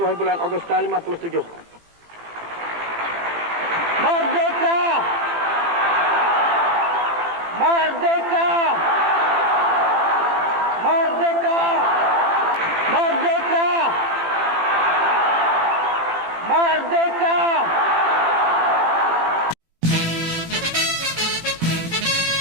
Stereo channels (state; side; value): late; left; 18 ms